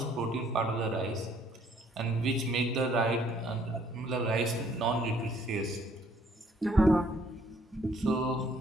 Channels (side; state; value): both; normal; correlation 0.63